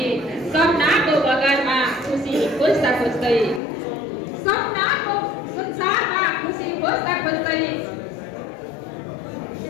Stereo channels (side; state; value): right; drops out; at 3.6 s